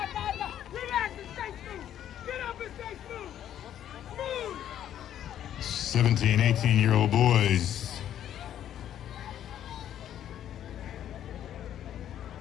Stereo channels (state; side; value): quieter; right; 10.8 dB